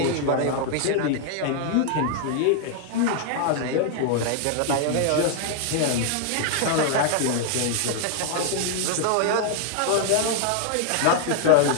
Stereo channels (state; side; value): different; both; correlation 0.00